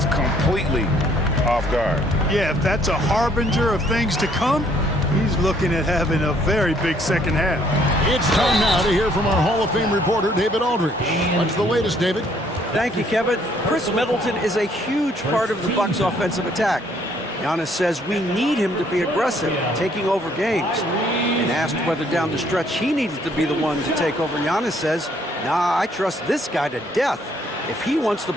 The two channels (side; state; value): both; normal; correlation 0.65